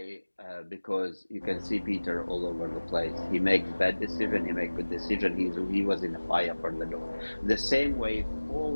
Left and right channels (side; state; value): both; inverted; correlation -1.00